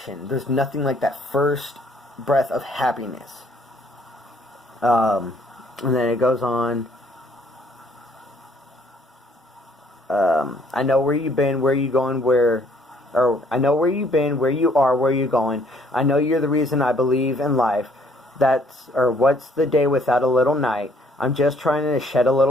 there's nothing like that first breath of happiness. And then it goes on. I know where you've been, where you going, I know where you've been, where you are, where you're going. I know you're the reason I believe in life. What's the day without a little night? I'm just trying to shed a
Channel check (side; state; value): both; normal; correlation 0.63